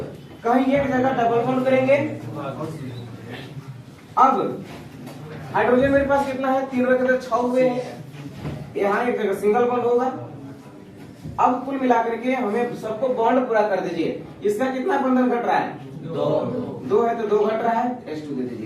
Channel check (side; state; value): both; identical; correlation 1.00